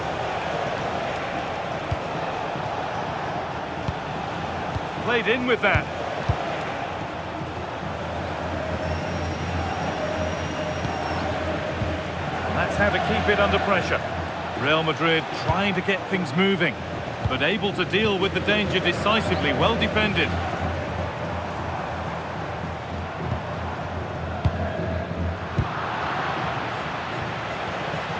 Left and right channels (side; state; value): both; identical; correlation 1.00